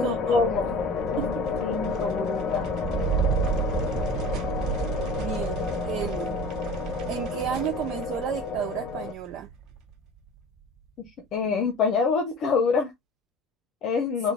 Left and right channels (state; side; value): normal; both; correlation 0.38